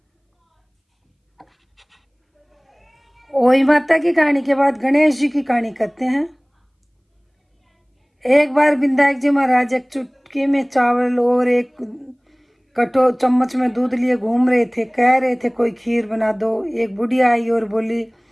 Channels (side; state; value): both; identical; correlation 1.00